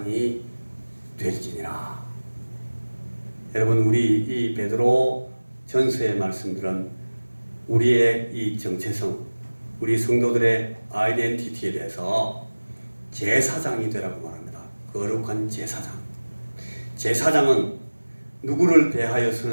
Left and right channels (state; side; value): inverted; both; correlation -1.00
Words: 될지니라. 여러분 우리 이 베드로 전서의 말씀들은 우리의 이 정체성, 우리 성도들의 아이덴티티에 대해서 제사장이 되라고 말합니다. 거룩한 제사장. 제사장은 누구를 대하여